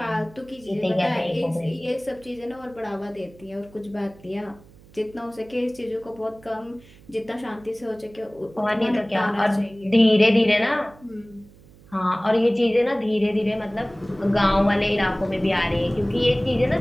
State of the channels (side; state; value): right; noise; hum, 24 dB below the sound